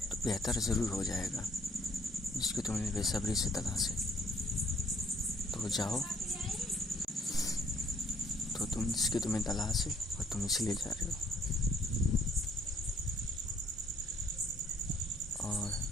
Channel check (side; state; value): both; normal; correlation 0.64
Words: तो बेहतर ज़रूर हो जाएगा, जिसकी तुम्हें बेसब्री से तलाश है। तो जाओ, तो जिसकी तुम्हें तलाश है और तुम इसलिए जा रहे हो, और